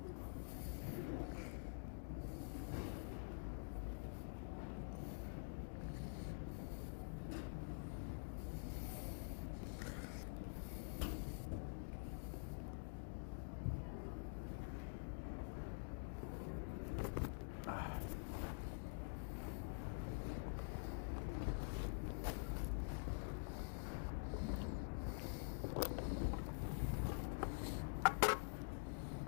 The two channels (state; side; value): silent; right; digital silence